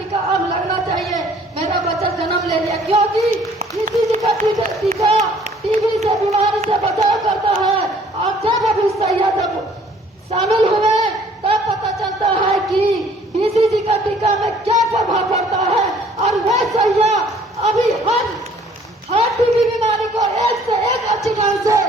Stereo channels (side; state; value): both; normal; correlation 0.58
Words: अब लगना चाहिए, मेरा बच्चा जन्म ले लिया, क्योंकि बीसीजी का टीका टीबी से बीमारी से बचाव करता है। और जब अभी सैया जब शामिल हुए तब पता चलता है कि बीसीजी का टीका में क्या प्रभाव पड़ता है। और वह सैया अभी हर टीबी बीमारी को एक से एक अच्छी ढंग से